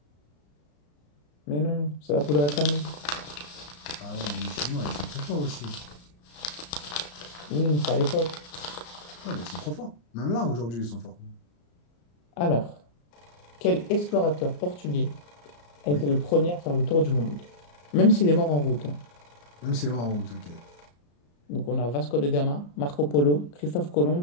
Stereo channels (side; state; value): right; late; 34 ms